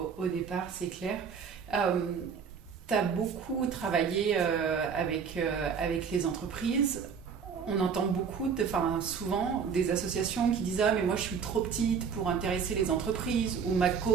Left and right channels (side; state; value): left; quieter; 6.5 dB